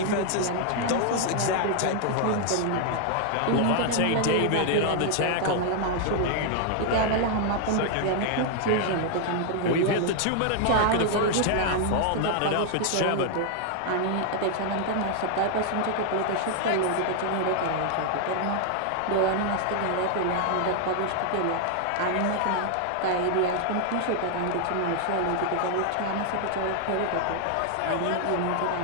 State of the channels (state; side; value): different; both; correlation 0.00